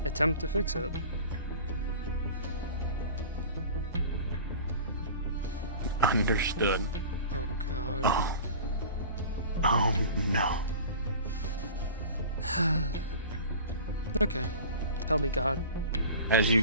attempt to fix it. Understood. Oh god. Oh. Oh no. Okay. Tell me, God. As you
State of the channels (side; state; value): both; inverted; correlation -0.39